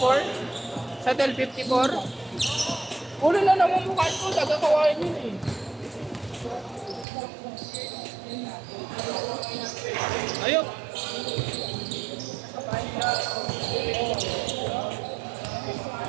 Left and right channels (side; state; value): left; drops out; at 7.1 s